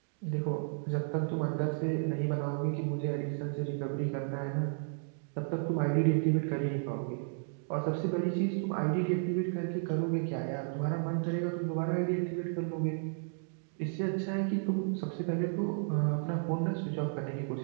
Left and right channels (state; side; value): silent; left; digital silence